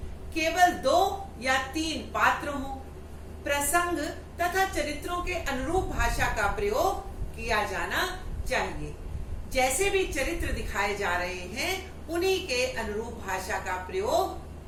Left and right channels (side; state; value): both; identical; correlation 1.00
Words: केवल 2 या 3 पात्र हों। प्रसंग तथा चरित्रों के अनुरूप भाषा का प्रयोग किया जाना चाहिए। जैसे भी चरित्र दिखाए जा रहे हैं उन्हीं के अनुरूप भाषा का